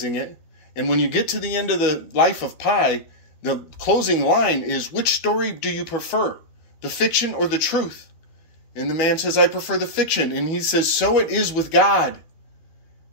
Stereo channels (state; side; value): late; right; 13 ms